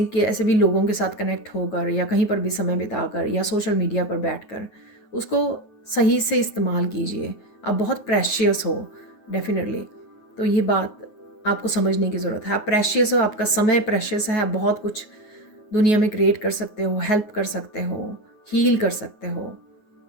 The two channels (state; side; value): late; right; 9.4 ms